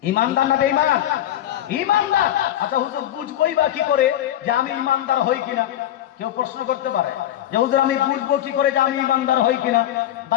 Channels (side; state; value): right; quieter; 12.2 dB